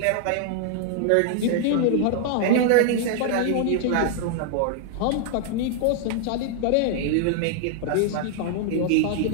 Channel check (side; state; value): both; different; correlation 0.00